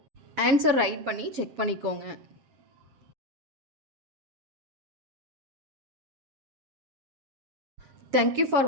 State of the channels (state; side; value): late; left; 7.5 ms